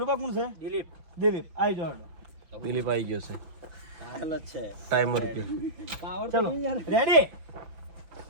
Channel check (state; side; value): late; left; 6.1 ms